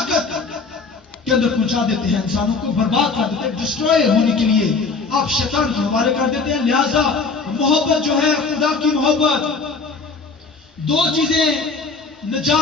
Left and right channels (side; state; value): right; quieter; 4.4 dB